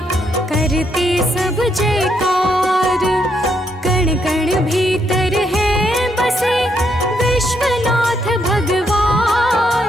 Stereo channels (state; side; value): normal; both; correlation 0.76